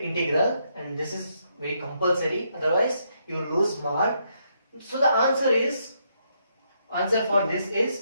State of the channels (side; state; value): both; inverted; correlation -0.76